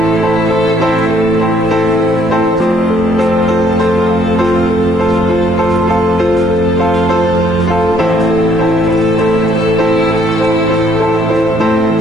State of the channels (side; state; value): both; normal; correlation 0.66